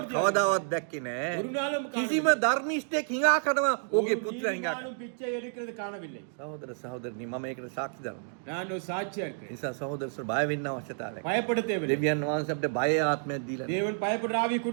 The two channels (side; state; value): left; silent; digital silence